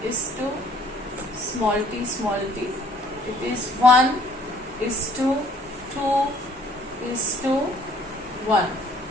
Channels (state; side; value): normal; both; correlation 0.59